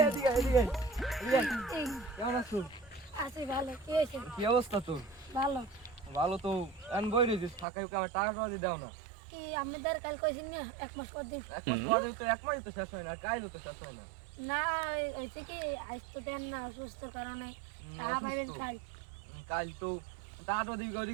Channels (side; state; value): left; drops out; at 7.7 s